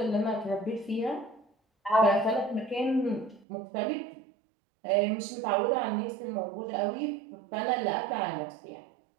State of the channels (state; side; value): drops out; left; at 3.5 s